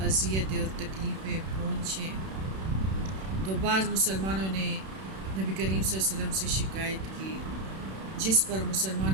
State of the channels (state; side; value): late; left; 31 ms